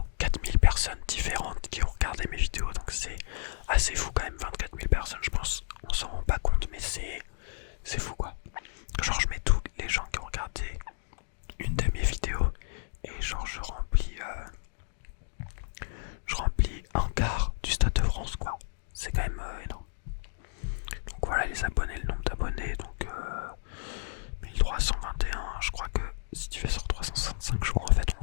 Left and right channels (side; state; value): right; silent; digital silence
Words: 000 personnes différentes qui ont regardé mes vidéos. Donc c'est assez fou quand même, 24 000 personnes, je pense. On s'en rend pas compte mais c'est fou quoi. Genre je mets tous les gens qui ont regardé une de mes vidéos et genre je remplis un quart du Stade de France quoi. C'est quand même énorme. Donc voilà les abonnés, le nombre d'abonnés, donc 1321, je crois que si tu fais sur 365 jours en fait on